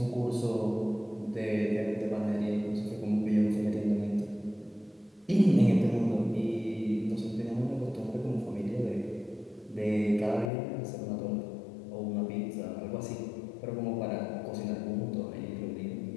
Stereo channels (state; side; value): drops out; right; at 10.5 s